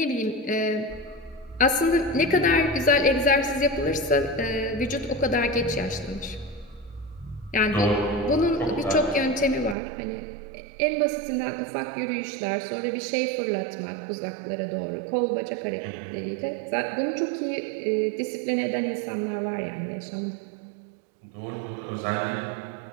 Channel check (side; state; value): left; drops out; at 9.8 s